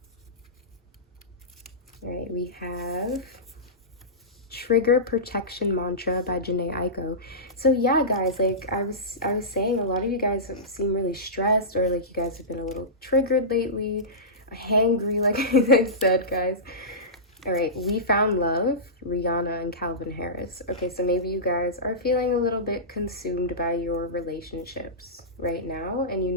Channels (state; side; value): normal; both; correlation -0.19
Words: All right, we have Trigger Protection Mantra by Janae Aiko. So yeah, guys, like I was saying, a lot of you guys seem really stressed, or like you guys have been a little triggered lately, hangry, like I said, guys. All right, We Found Love, Rihanna and Calvin Harris. Okay, so maybe you guys are feeling a little bit consumed by your relationships right now, and you